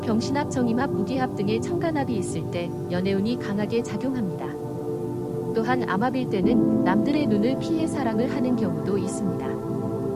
병신합, 정임합, 무기합 등의 천간합이 있을 때 연애운이 강하게 작용합니다. 또한 암합일 때는 남들의 눈을 피해 사랑을 하는 경우도 있습니다.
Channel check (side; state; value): both; identical; correlation 1.00